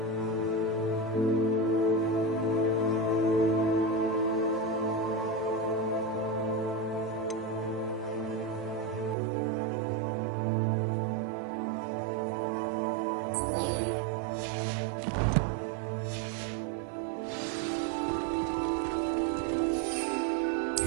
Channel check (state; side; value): drops out; left; at 9.2 s